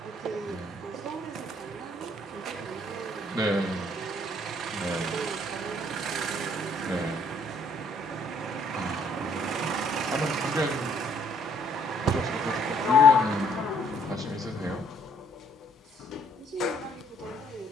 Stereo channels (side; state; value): both; normal; correlation 0.64